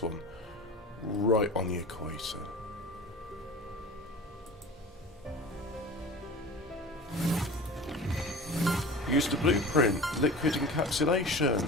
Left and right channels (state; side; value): normal; both; correlation 0.36